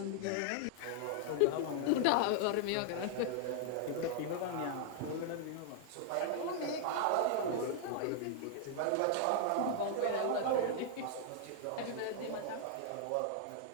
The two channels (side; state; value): both; different; correlation 0.00